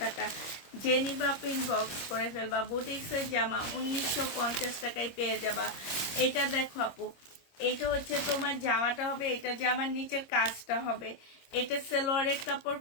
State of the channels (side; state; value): right; late; 25 ms